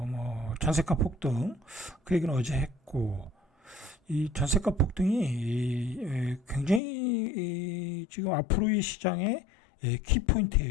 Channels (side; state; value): right; drops out; at 6.8 s